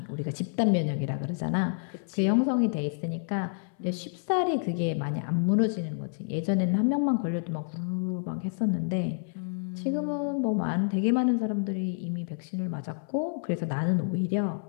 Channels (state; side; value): silent; right; 59 dB below the other